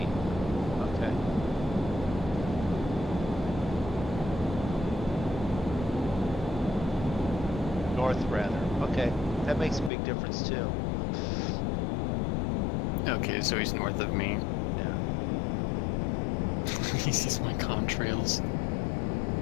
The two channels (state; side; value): drops out; right; at 9.9 s